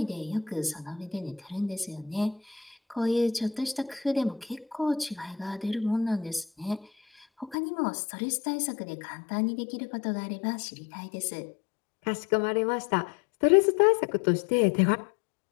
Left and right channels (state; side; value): drops out; right; at 7.6 s